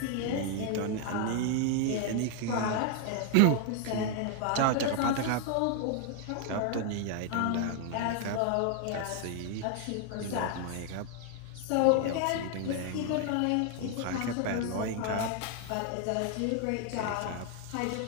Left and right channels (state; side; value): different; both; correlation 0.00